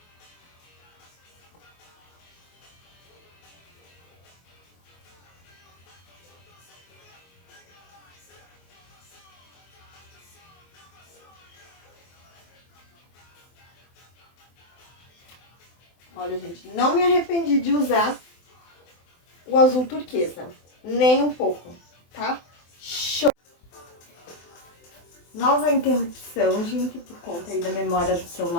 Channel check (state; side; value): late; right; 23 ms